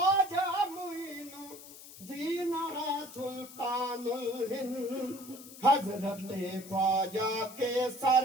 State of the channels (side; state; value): left; noise; hiss, 16 dB below the sound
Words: معین الدین ہے سلطان الہند، حضرت خواجہ کے